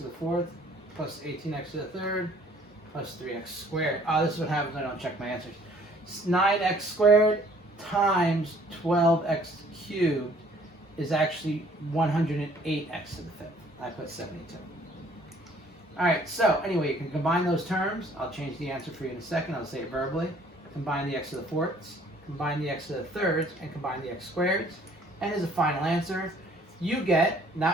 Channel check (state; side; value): normal; both; correlation 0.58